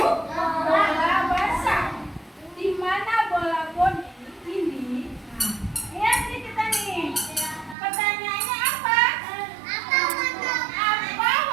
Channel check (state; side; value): drops out; left; at 7.8 s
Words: Bola basah. Di mana bola boni ini? Nah, lihat nih kita nih. Pertanyaannya apa? Apa